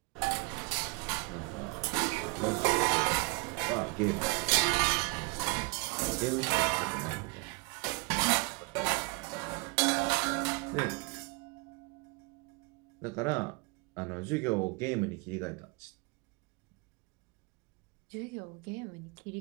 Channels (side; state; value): left; quieter; 29.2 dB